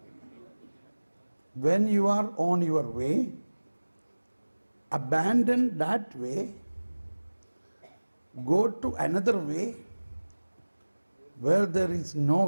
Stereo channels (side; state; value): both; inverted; correlation -1.00